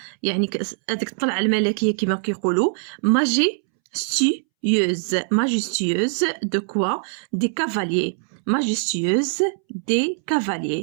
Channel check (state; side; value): silent; left; 64 dB below the other